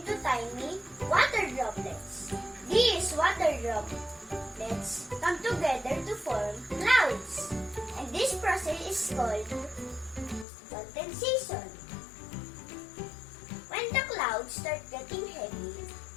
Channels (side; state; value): right; drops out; at 10.5 s